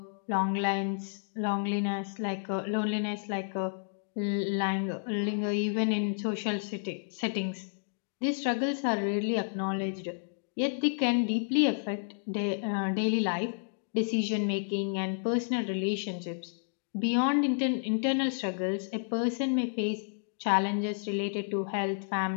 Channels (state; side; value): silent; right; digital silence